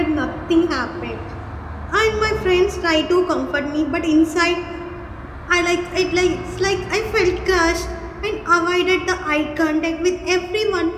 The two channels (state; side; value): identical; both; correlation 1.00